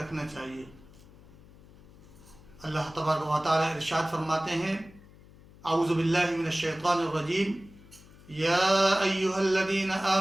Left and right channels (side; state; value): left; noise; hum, 23 dB below the sound